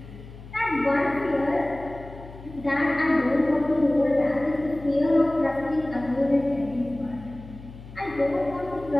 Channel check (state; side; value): noise; left; hum, 16 dB below the sound